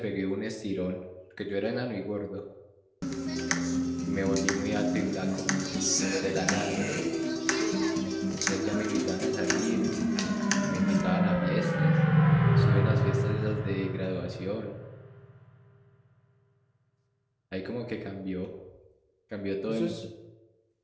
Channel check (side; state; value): both; identical; correlation 1.00